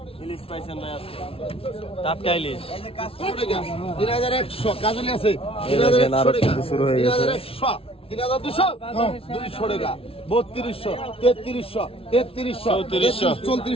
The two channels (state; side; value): late; right; 0.27 ms